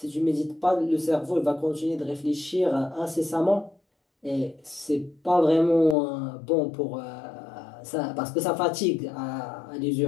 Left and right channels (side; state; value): right; drops out; at 6.0 s